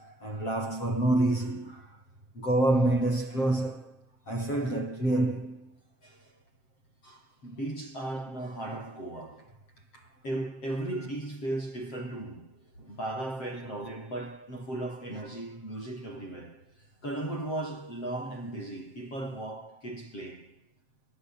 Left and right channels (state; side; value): late; right; 7.6 ms